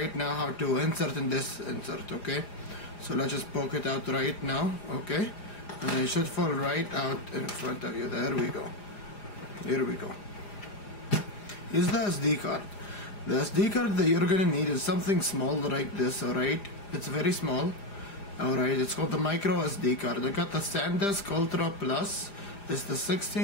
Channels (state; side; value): late; right; 5.0 ms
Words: now how to insert in this insert. Okay, so let's just poke it out right now. Okay, and it should fall right out in front of you. There we go. Here we go. Here's the SD card. The SD card that you're gonna need is something small like this. Alright, it's very small. Alright, it's called the micro SD card. I got the SanDisk Ultra Plus. It's the